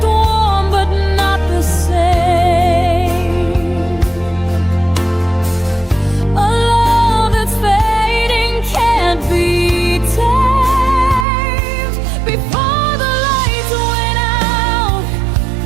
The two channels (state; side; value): drops out; left; at 11.2 s